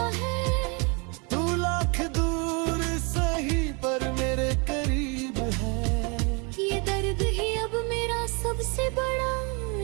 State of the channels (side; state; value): left; quieter; 31.7 dB